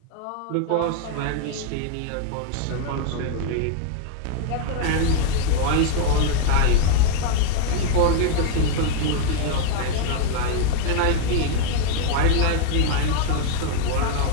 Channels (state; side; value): different; both; correlation 0.00